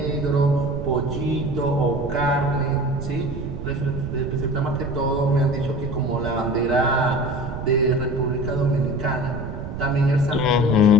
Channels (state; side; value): noise; right; rumble, 7 dB below the sound